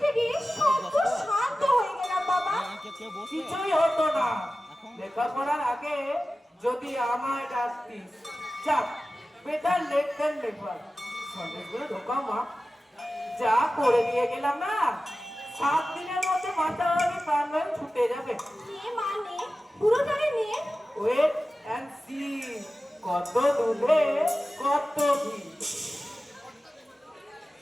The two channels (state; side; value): normal; both; correlation 0.95